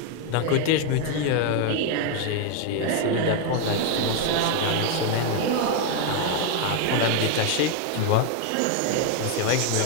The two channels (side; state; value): both; different; correlation 0.01